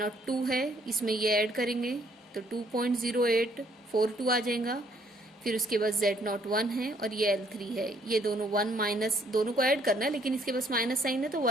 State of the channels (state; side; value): normal; both; correlation 0.66